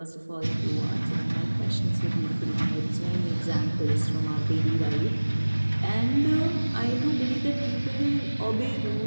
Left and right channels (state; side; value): inverted; both; correlation -1.00